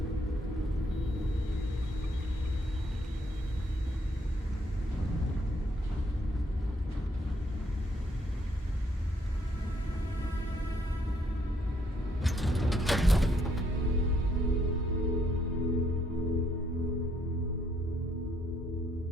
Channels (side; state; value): both; normal; correlation 0.71